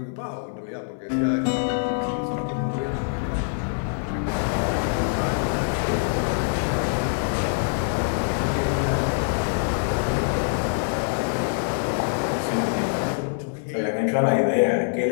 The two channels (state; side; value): silent; right; 62 dB below the other